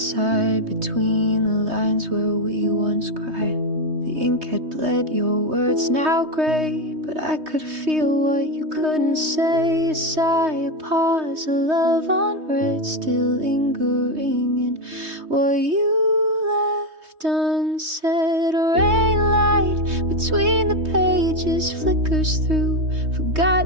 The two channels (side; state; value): left; late; 3.2 ms